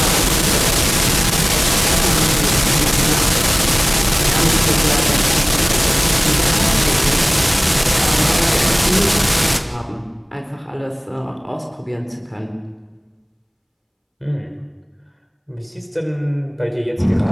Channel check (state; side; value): identical; both; correlation 1.00